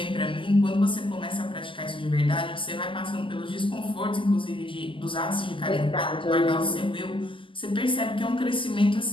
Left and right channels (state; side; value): late; right; 0.25 ms